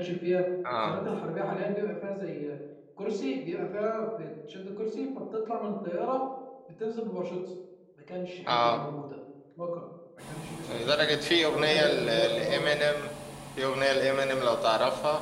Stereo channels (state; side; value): identical; both; correlation 1.00